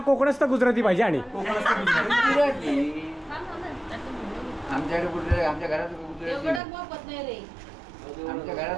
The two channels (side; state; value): left; drops out; at 6.6 s